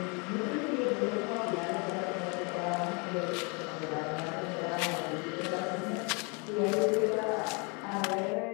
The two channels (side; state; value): right; quieter; 32.3 dB